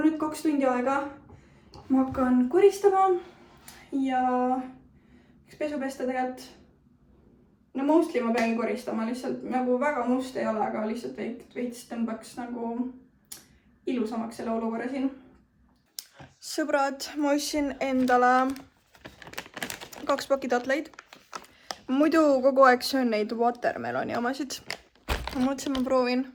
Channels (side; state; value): both; identical; correlation 1.00